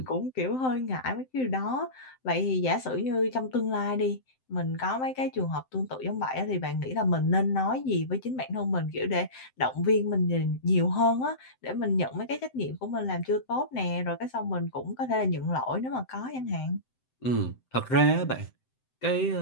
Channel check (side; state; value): right; late; 7.8 ms